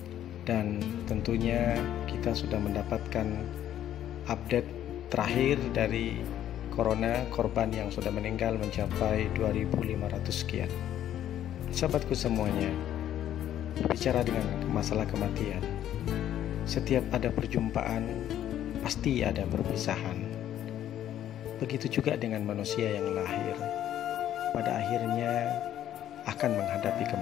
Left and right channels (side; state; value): right; quieter; 11.4 dB